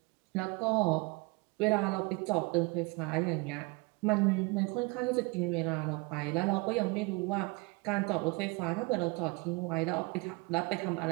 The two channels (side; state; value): left; quieter; 26.4 dB